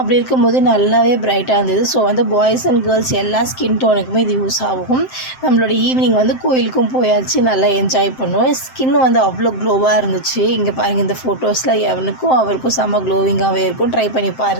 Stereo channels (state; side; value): late; right; 7.7 ms